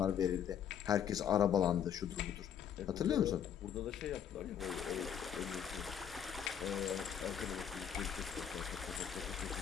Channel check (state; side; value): quieter; right; 8.8 dB